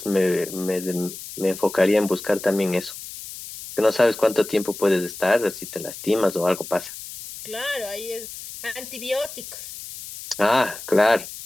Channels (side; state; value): left; noise; hiss, 12 dB below the sound